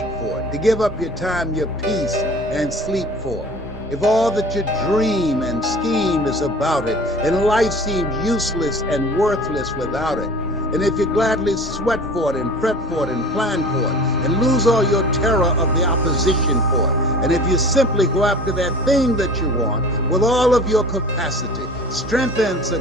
for it, to give up your time, your peace, and sleep for it, if all that you dream and scheme is about it, and life seems useless and worthless without it, and if you gladly sweat for it and fret for it and plan for it, and lose all your terror of the opposition for it, and if you simply go after that thing that you want with all of your capacity, strength and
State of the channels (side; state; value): both; normal; correlation 0.41